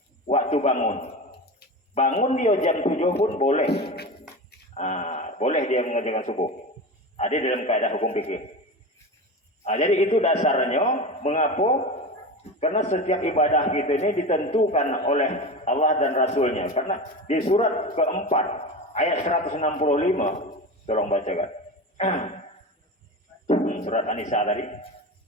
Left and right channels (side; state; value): both; normal; correlation 0.26